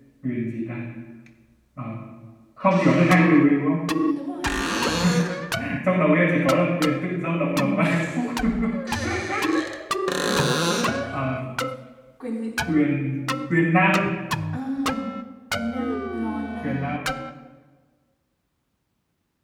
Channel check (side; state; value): both; identical; correlation 1.00